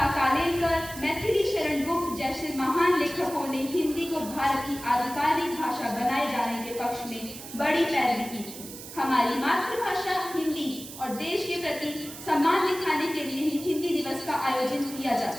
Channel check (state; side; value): noise; right; hiss, 13 dB below the sound